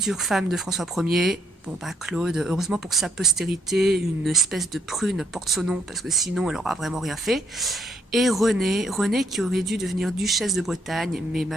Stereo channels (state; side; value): normal; both; correlation 0.71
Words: femme de François Ier. Bon bah Claude, heureusement pour sa postérité, une espèce de prune porte son nom, parce que sinon elle aura vraiment rien fait. Et Renée qui aurait dû devenir duchesse de Bretagne, mais